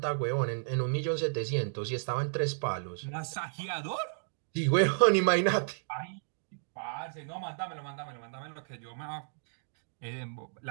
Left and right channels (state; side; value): silent; left; digital silence